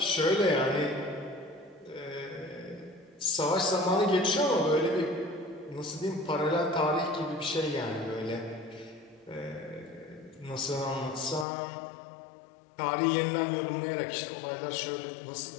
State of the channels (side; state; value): right; drops out; at 11.5 s